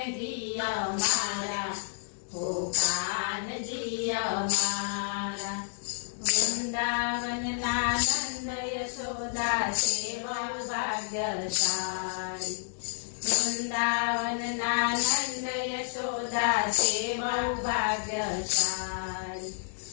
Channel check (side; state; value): right; silent; digital silence